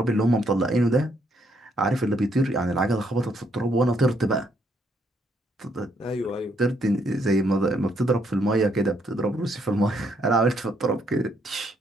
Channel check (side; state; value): both; normal; correlation 0.72